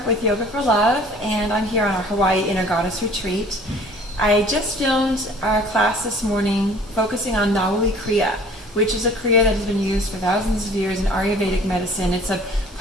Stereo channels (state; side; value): normal; both; correlation 0.50